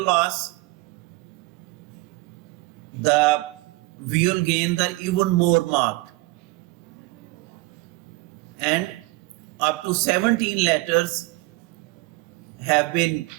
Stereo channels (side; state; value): left; quieter; 22.3 dB